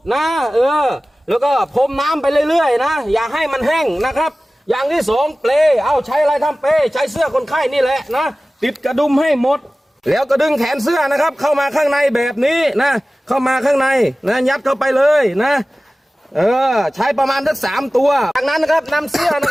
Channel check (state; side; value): normal; both; correlation 0.97